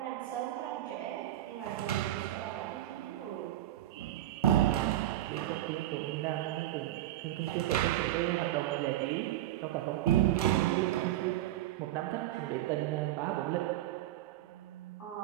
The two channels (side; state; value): left; quieter; 13.9 dB